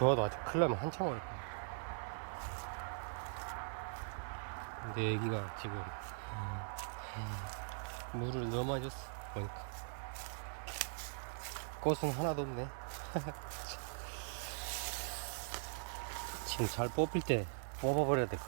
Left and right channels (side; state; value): left; silent; 50 dB below the other